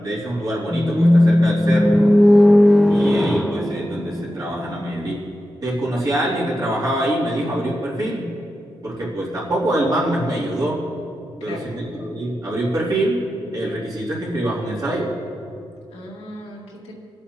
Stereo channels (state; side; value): normal; both; correlation 0.91